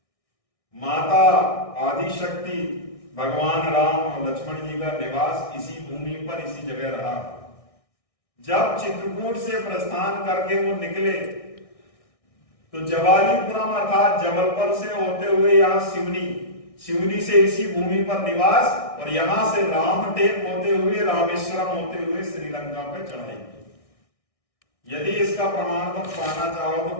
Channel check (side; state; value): right; late; 1.6 ms